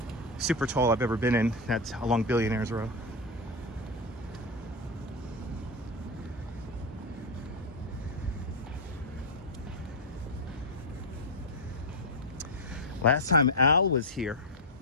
super tall I've ever been in. That's along Billionaires Row. Last time Al was here,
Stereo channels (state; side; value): normal; both; correlation 0.06